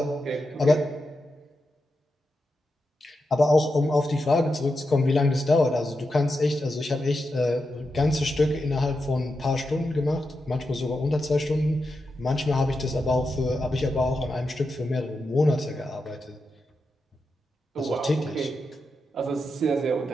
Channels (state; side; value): normal; both; correlation 0.88